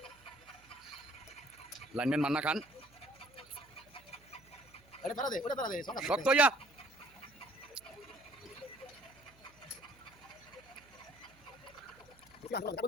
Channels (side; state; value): right; noise; hum, 26 dB below the sound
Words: লাইনম্যান মান্না খান ওটা পারা দে, ওটা পারা দে, শক্ত হইয়া